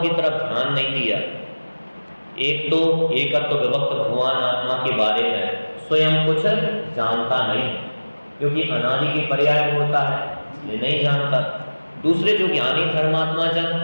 तरफ ध्यान नहीं दिया। एक तो एकत्व विभक्त भगवान आत्मा के बारे में स्वयं कुछ जानता नहीं, क्योंकि अनादि के पर्याय में होता है इसलिए नहीं जानता। दूसरे जो ज्ञानी धर्मात्मा जन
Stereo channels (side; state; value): both; inverted; correlation -1.00